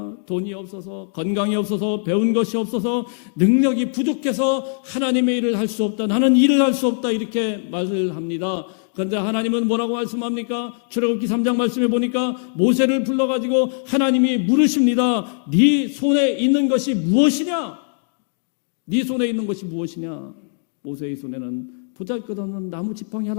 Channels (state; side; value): silent; right; digital silence